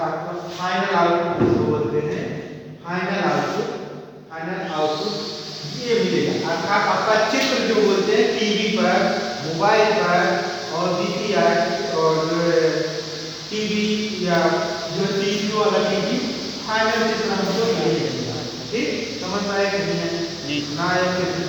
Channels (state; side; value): identical; both; correlation 1.00